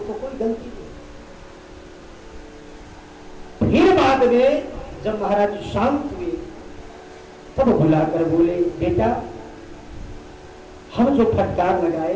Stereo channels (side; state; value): both; identical; correlation 1.00